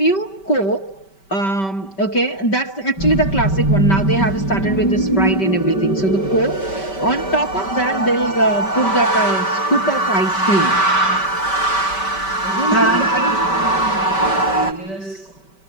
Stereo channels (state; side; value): late; right; 5.2 ms